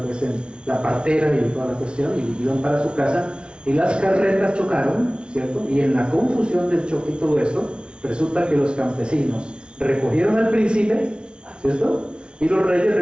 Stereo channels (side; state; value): left; late; 0.057 ms